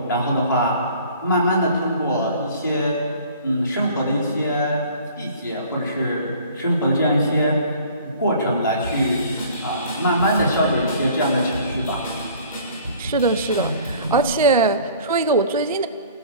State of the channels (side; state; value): both; inverted; correlation -0.50